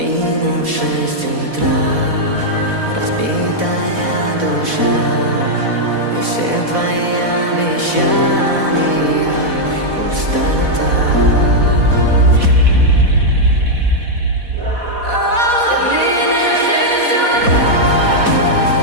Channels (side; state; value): left; late; 4.1 ms